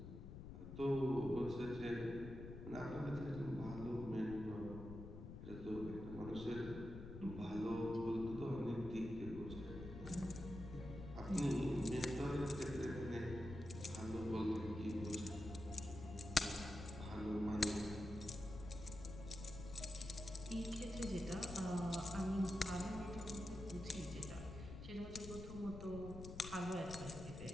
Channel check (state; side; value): noise; left; rumble, 9 dB below the sound